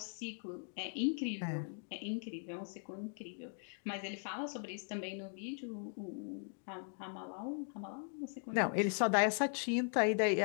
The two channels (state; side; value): silent; right; 52 dB below the other